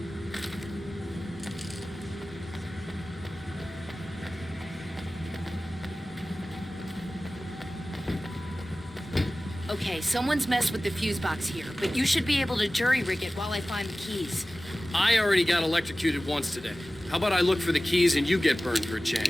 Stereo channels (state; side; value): normal; both; correlation 0.97